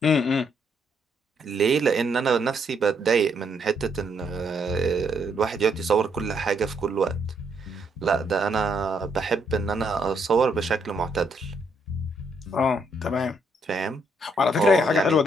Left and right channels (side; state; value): both; normal; correlation 0.73